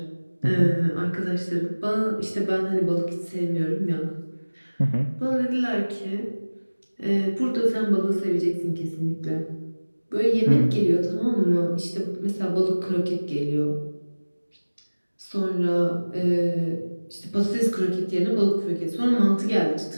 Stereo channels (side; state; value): both; inverted; correlation -1.00